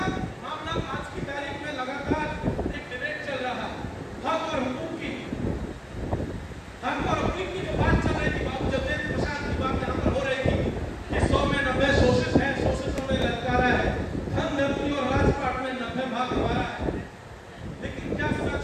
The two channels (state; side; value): identical; both; correlation 1.00